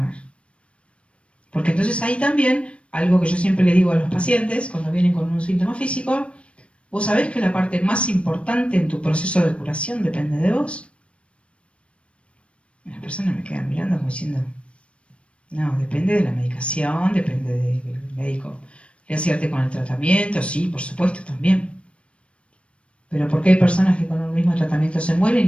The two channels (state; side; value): late; right; 0.060 ms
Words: Porque entonces ahí también, algo que yo siempre le digo a los pacientes cuando vienen con un síntoma físico, vos sabés que la parte más importante en tu proceso de curación depende de vos. Las personas me quedan mirando como diciendo, no, depende de la medicación, depende del médico. ¿Le acierte con el tratamiento? Sí, por supuesto, también. Pero ¿por qué hay personas que con el mismo tratamiento se